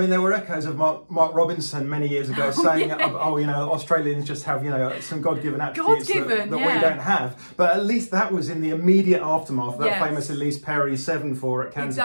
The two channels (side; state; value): both; inverted; correlation -1.00